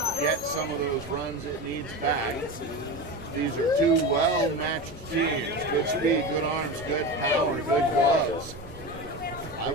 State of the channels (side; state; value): both; normal; correlation 0.25